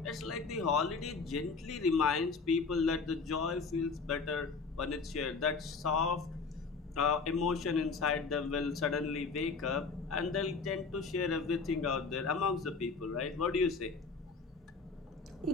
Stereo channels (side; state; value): right; quieter; 4.6 dB